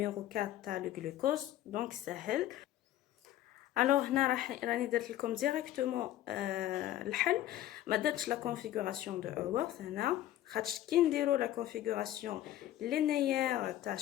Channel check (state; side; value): quieter; right; 13.4 dB